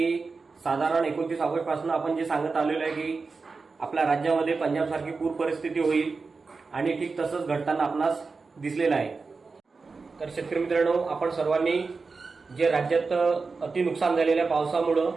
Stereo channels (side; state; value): left; quieter; 4.4 dB